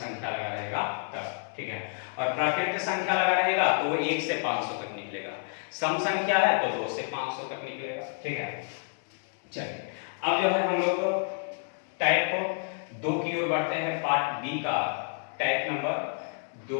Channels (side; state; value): right; silent; 58 dB below the other